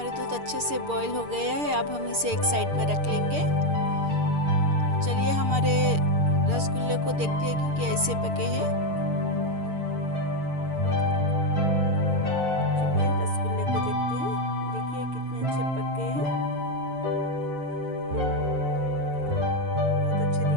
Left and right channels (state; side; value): late; left; 6.7 ms